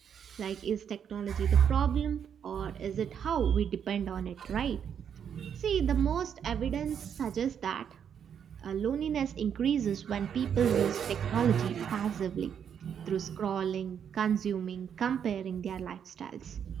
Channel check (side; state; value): left; quieter; 8.1 dB